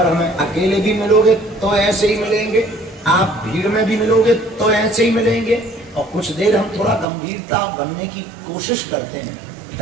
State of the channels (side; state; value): left; drops out; at 7.1 s